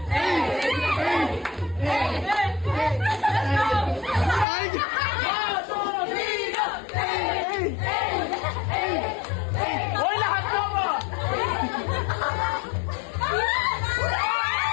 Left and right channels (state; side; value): drops out; right; at 4.5 s